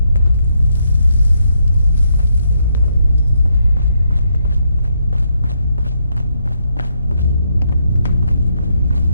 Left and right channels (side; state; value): both; inverted; correlation -0.77